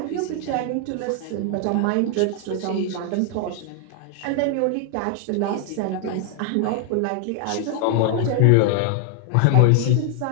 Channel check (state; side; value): different; both; correlation 0.00